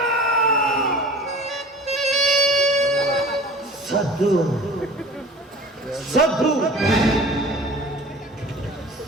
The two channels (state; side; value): normal; both; correlation 0.43